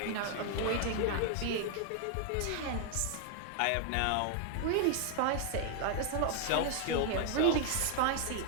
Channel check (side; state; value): both; different; correlation 0.00